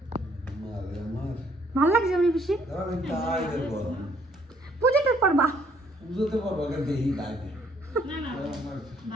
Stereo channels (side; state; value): both; normal; correlation 0.65